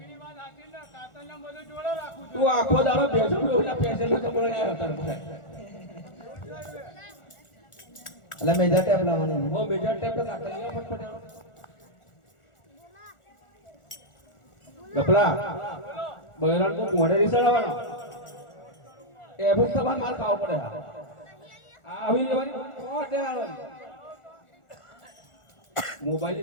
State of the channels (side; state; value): right; late; 1.4 ms